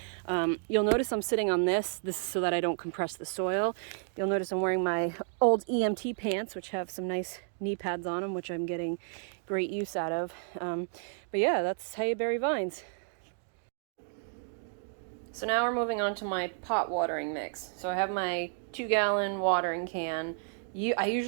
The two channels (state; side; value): silent; left; 57 dB below the other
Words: You'll notice I'm sitting on this is so that I don't compress the soil. You'll notice I'm wearing my old EMT pants, which have some nice knee pads on them, which I'm getting great use out of. But yeah, that's how you bury vines. So now we're moving on to my pot watering mix. So I have my 2-gallon watering can. I